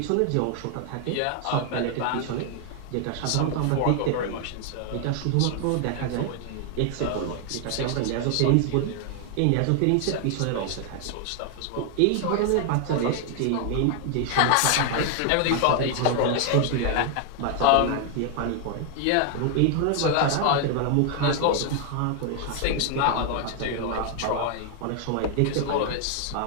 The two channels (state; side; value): different; both; correlation 0.00